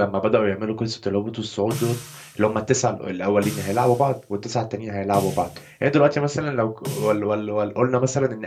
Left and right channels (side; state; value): both; identical; correlation 1.00